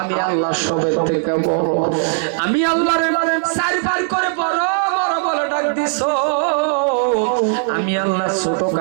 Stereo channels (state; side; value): silent; left; 67 dB below the other